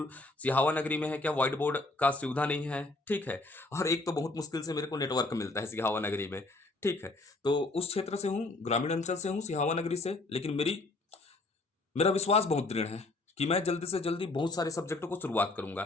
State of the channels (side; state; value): right; quieter; 3.1 dB